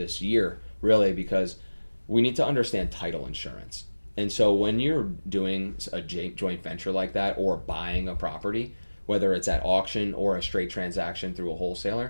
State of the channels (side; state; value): both; inverted; correlation -1.00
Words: year, really, because we need to understand title insurance. And so when you're doing a joint venture like that, or buying a property, whether it's at auction or a straight transaction through a